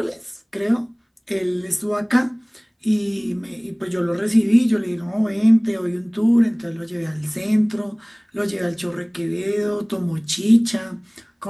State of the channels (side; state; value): both; identical; correlation 1.00